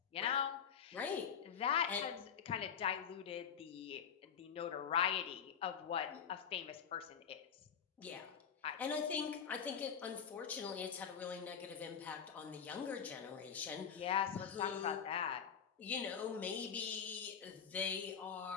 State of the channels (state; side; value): quieter; right; 7.6 dB